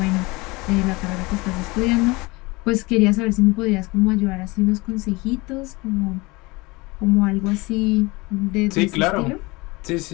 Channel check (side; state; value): right; quieter; 24.0 dB